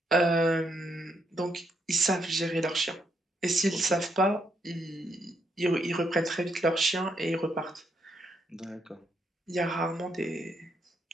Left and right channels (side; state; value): both; normal; correlation 0.76